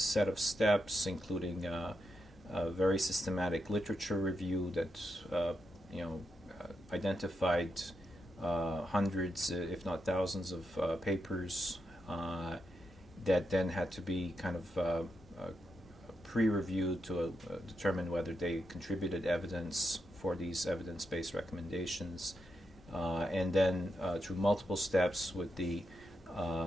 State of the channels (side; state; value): both; normal; correlation 0.84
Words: of steps, including a very systematic literature review that identified hundreds, if not thousands, of papers that then had to be kind of pre-reviewed to determine whether they contributed evidence for these evidence-based recommendations, and then through multiple steps with the